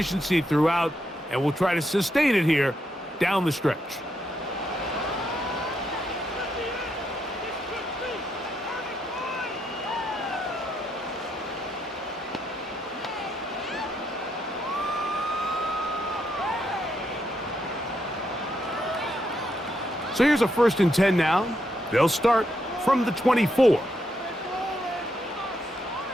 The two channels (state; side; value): normal; both; correlation 0.79